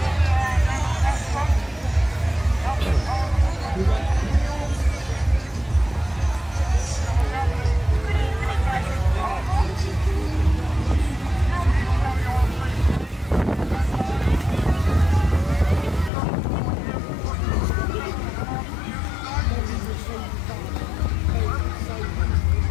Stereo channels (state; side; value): drops out; right; at 16.1 s